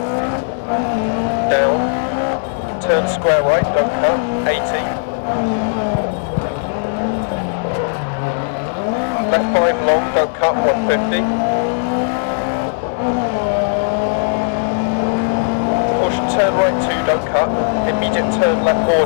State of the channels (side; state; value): right; silent; digital silence